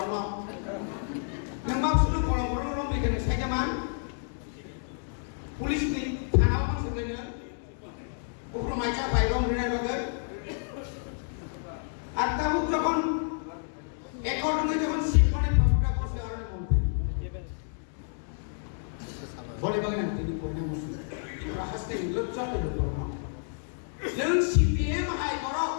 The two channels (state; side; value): silent; right; digital silence